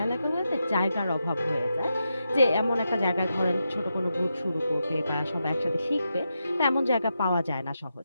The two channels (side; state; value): both; inverted; correlation -0.86